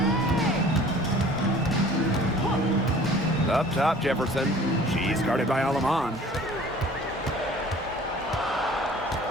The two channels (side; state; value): both; normal; correlation 0.49